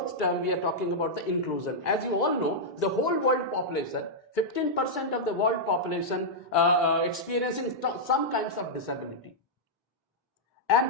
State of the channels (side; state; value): both; normal; correlation -0.07